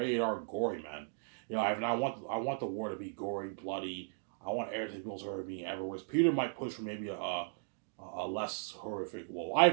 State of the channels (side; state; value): left; silent; digital silence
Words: R gory, man. You know, I want the war to be gory, bloody. I want everything people's horror being everywhere. Whereas Peter might push for maybe a less horrific. Well, I